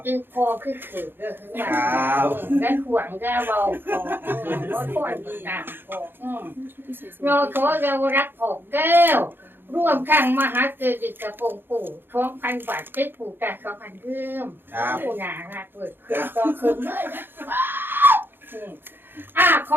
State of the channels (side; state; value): left; late; 0.10 ms